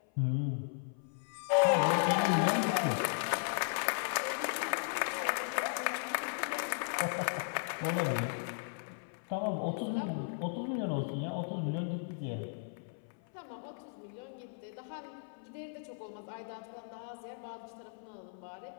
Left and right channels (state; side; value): silent; right; 54 dB below the other